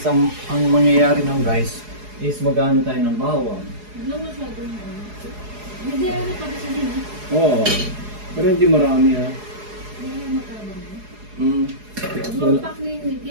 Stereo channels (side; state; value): left; late; 4.8 ms